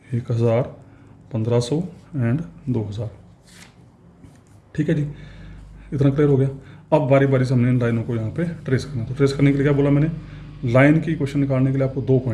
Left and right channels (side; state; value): both; identical; correlation 1.00